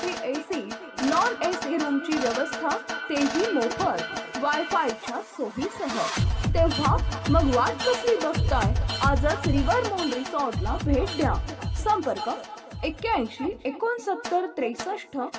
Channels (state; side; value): identical; both; correlation 1.00